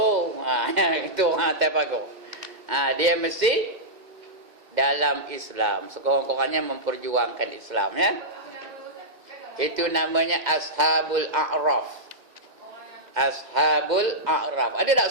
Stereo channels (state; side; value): late; left; 2.1 ms